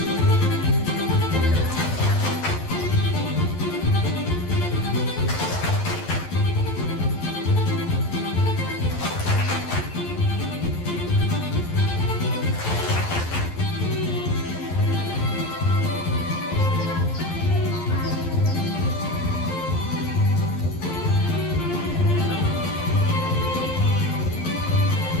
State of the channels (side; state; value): right; late; 11 ms